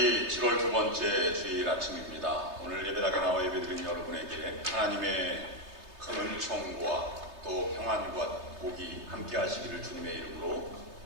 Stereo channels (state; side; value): late; left; 3.3 ms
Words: 7월 두 번째 주일 아침입니다. 오늘 예배당에 나와 예배드린 여러분에게 하나님의 큰 은총과 또 평안과 복이 함께 하시기를 주님의 이름으로